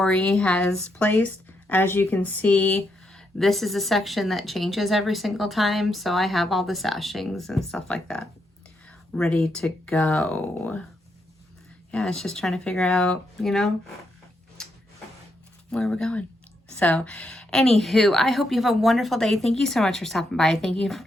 has placed. As you can see, this is a section that changes every single time. So I have all the sashings and stuff like that ready to go. Yeah, it's just trying to figure out, you know, where we're going. So anywho, I hope you have a wonderful day. Thank you so much for stopping by. Thank you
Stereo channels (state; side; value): normal; both; correlation 0.80